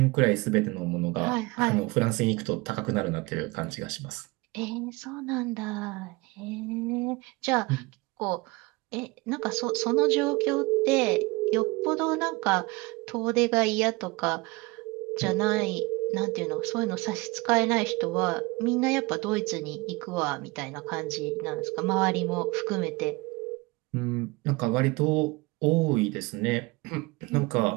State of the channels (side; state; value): left; quieter; 24.2 dB